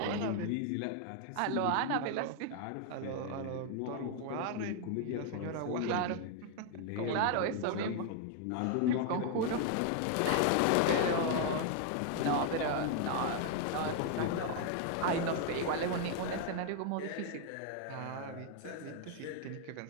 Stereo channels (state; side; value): different; both; correlation 0.00